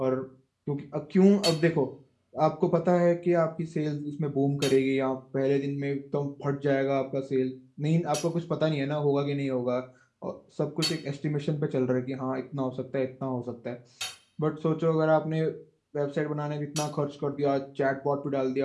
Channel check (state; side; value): identical; both; correlation 1.00